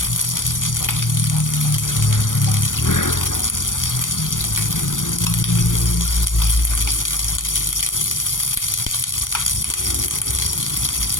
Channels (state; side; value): late; right; 0.88 ms